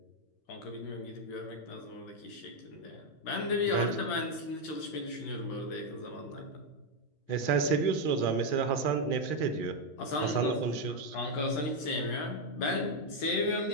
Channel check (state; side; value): late; right; 13 ms